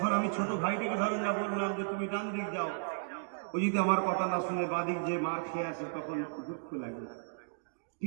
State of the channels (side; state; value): left; silent; digital silence